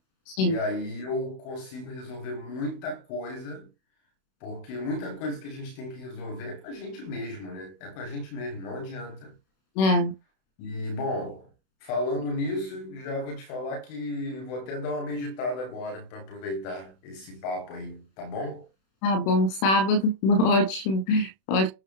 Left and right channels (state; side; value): late; right; 31 ms